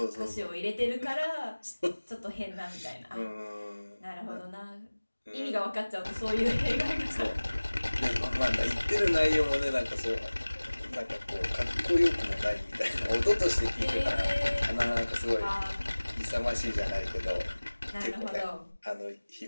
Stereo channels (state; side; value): inverted; both; correlation -1.00